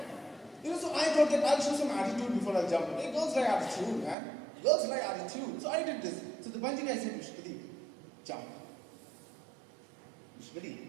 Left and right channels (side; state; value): left; drops out; at 4.2 s